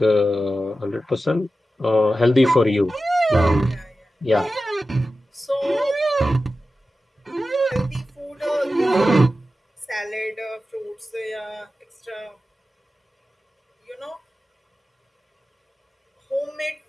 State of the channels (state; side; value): normal; both; correlation 0.93